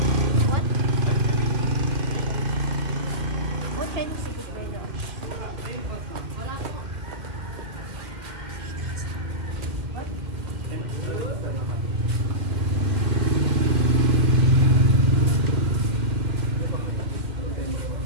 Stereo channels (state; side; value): late; left; 2.1 ms